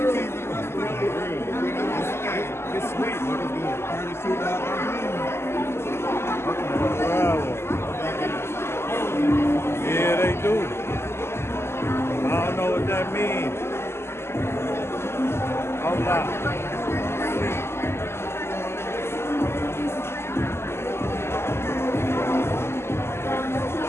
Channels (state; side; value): late; right; 0.12 ms